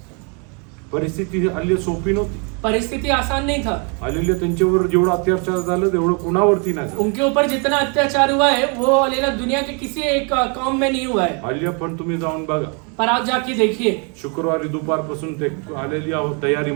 परिस्थिती हालेलुया सोपी नव्हती. परिस्थिति आसान नहीं था। हालेलुया, त्यांच्यावर जेवढं अत्याचार झालं तेवढं कोणावरती नाही झालं. उनके ऊपर जितना अत्याचार हुआ है वो हालेलुया दुनिया के किसी एक कौम में नहीं हुआ है। हालेलुया, पण तुम्ही जाऊन बघा, पर आप जाके देखिए, शुक्रवारी दुपारपासून ते हालेलुया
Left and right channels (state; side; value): quieter; left; 35.8 dB